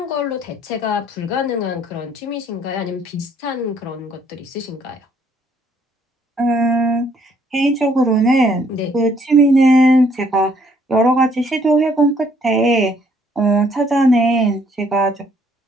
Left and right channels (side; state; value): both; normal; correlation 0.65